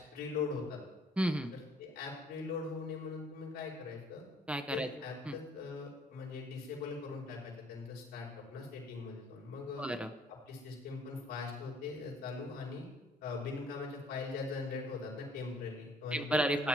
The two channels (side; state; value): both; normal; correlation 0.60